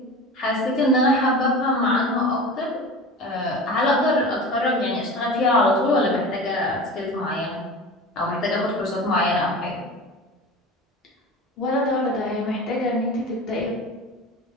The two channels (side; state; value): both; normal; correlation 0.33